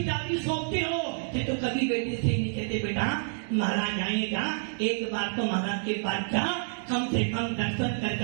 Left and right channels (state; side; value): silent; left; digital silence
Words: जाती सोचते हो। तो कभी बेटे से नहीं कहते बेटा महाराज आएगा, एक बार तो महाराज के पास जा, कम से कम दर्शन